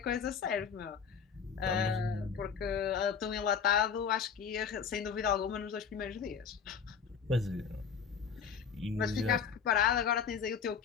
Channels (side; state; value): right; quieter; 6.7 dB